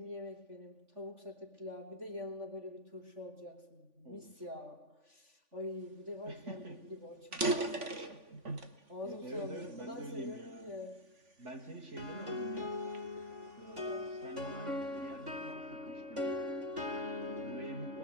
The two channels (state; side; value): late; left; 3.5 ms